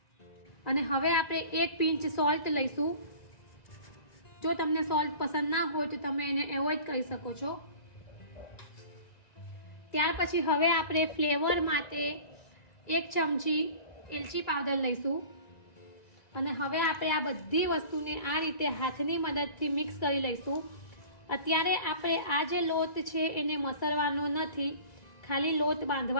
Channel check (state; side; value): late; right; 1.9 ms